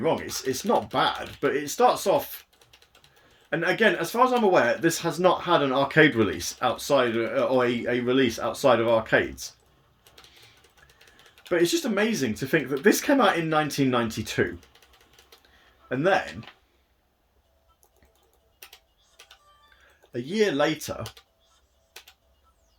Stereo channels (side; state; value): both; identical; correlation 1.00